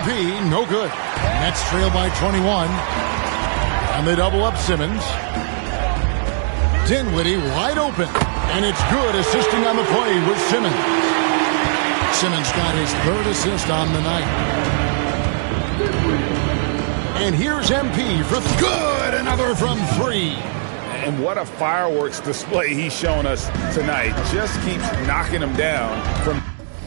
no good. Nets trail by 21. And they double up Simmons. Dinwiddie wide open. And it's good, assisting on the play with Simmons. Simmons got his third assist on the night. And here's MP for good. Another from three. And what a fireworks display he's shown us tonight. Just keeps knocking him down from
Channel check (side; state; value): left; silent; digital silence